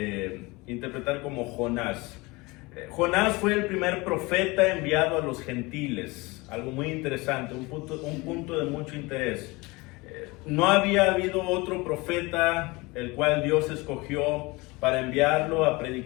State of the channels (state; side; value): quieter; right; 23.9 dB